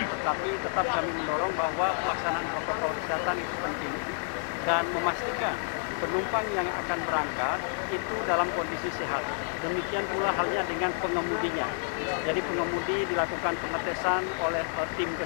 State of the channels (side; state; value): right; silent; digital silence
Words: tetap kami mendorong bahwa pelaksanaan protokol kesehatan itu penting dan memastikan penumpang yang akan berangkat itu dalam kondisi sehat. Demikian pula halnya dengan pengemudinya. Jadi pengemudi dilakukan pengetesan oleh tim